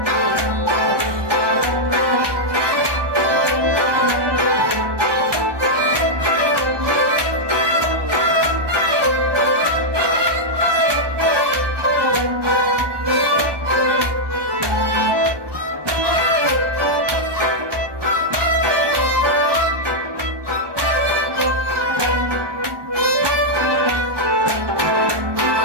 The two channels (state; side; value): late; left; 1.2 ms